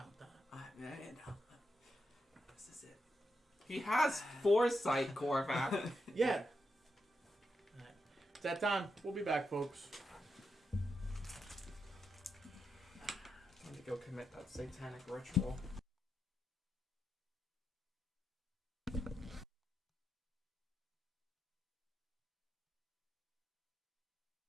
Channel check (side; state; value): both; normal; correlation 0.85